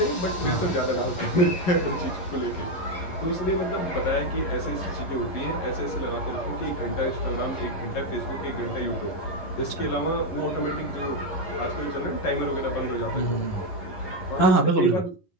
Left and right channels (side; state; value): right; late; 11 ms